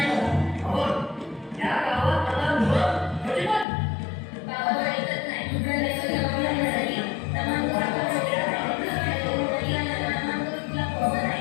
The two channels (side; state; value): right; drops out; at 3.7 s